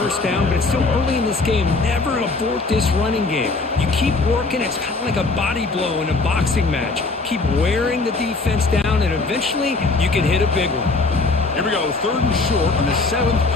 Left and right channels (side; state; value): right; quieter; 3.7 dB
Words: down, but it's still early in this game. Never abort this running game. You keep working. It's kind of like a body blow in a boxing match. Keep wearing the defense down, and eventually you can hit a big one. Here we go, third and short on the 7th